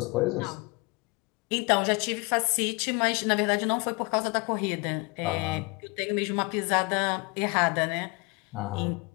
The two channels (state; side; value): quieter; right; 28.4 dB